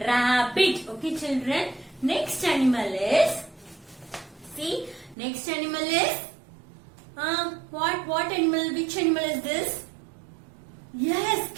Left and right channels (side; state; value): left; drops out; at 5.2 s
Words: rabbit. Okay, children. Next animal is. See. Next animal is. What animal? Which animal is this? Yes,